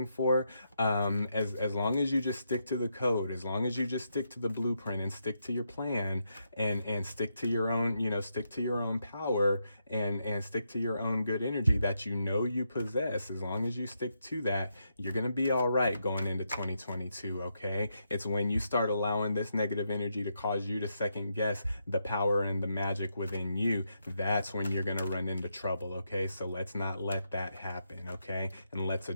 for, as long as you just stick to the code, as long as you just stick to the blueprint and stick to your plan and stick to your own power and stick to your own good energy that you possess, as long as you stick to that, you're gonna be all right going into 2022. Okay, it's when you start allowing this negative energy to cause you to second guess the power and the magic within you, that's when you're going to run into trouble. Okay, so let's not let that happen. Okay, and let's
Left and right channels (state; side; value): inverted; both; correlation -0.81